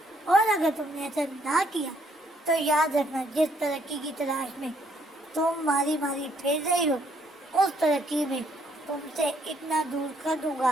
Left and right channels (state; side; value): normal; both; correlation 0.69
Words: اور اگر تم نے ایسا نہ کیا تو یاد رکھنا، جس ترقی کی تلاش میں تم ماری ماری پھر رہی ہو، اس ترقی میں تم سے اتنا دور کر دوں